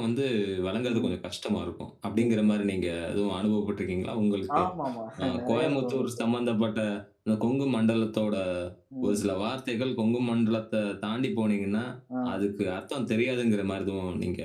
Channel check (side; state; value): both; identical; correlation 1.00